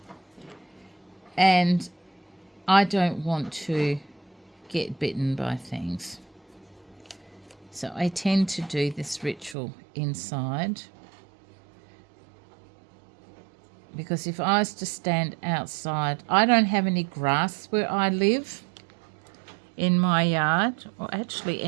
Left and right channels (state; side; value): drops out; left; at 9.6 s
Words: and I don't want to get bitten by things. So I tend to do this ritual inside, because if I was to stand outside, I don't have any grass where I live in my yard, or actually